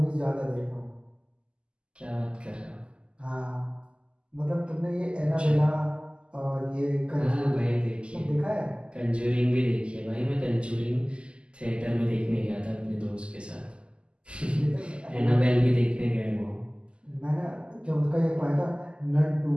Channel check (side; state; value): left; late; 0.051 ms